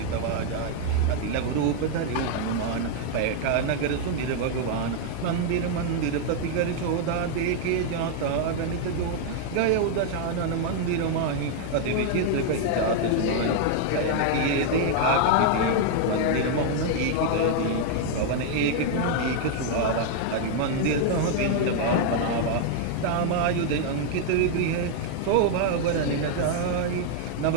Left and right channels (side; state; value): both; different; correlation 0.00